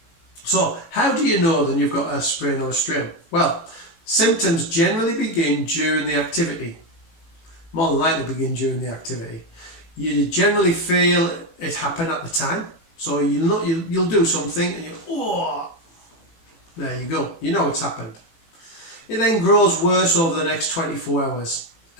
So, how do you know then you've got a sprain or a strain? Well, symptoms generally begin during the activity. More than likely begin during the activity. You generally feel it happen at the time. So you'll do something and there you go. You know it's happened. It then grows worse over the next 24 hours.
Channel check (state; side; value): late; right; 18 ms